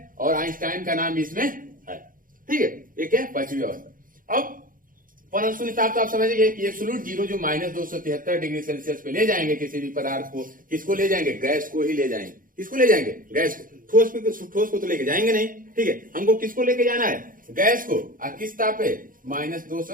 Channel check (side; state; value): left; late; 0.40 ms